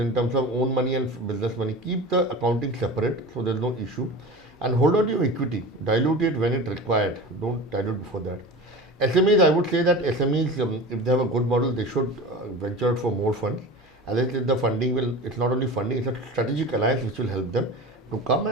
terms of own money and business money. Keep the accounting separate, so there's no issue, and hold on to your equity. Dilute it when it required. Don't dilute before that. SMEs, I would say that SMEs, if they have a good model, they should venture out for more funds. As I said, the funding will, it's not only funding, it's a strategic alliance which will help them to come,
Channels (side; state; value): both; normal; correlation 0.33